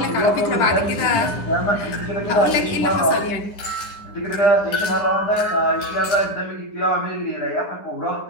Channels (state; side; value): late; right; 10 ms